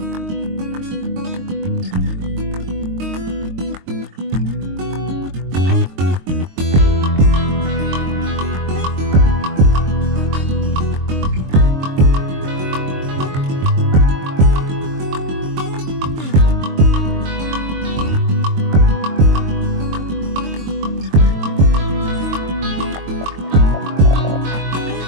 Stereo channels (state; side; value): late; left; 22 ms